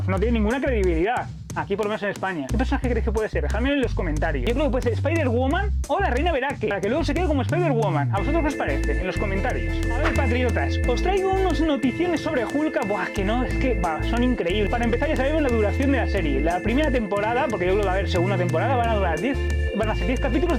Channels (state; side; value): identical; both; correlation 1.00